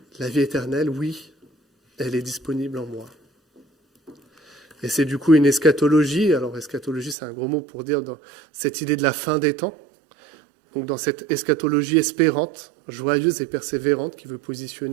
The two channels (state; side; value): drops out; left; at 7.2 s